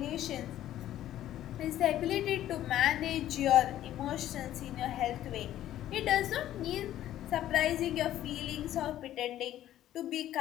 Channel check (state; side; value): quieter; right; 12.7 dB